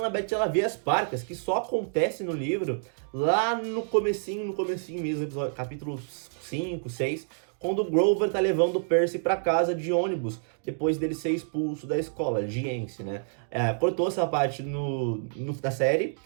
ela vê as parcas, que só acontece no livro lá no comecinho mesmo, episódio, capítulo 5, 6, quando o Grover tá levando o Percy pra casa de ônibus, depois dele ser expulso da escola, de Ence, né? Cortou essa parte da série,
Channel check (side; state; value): left; silent; digital silence